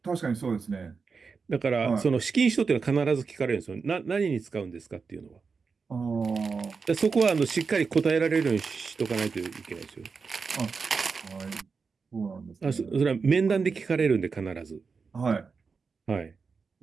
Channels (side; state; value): left; quieter; 5.0 dB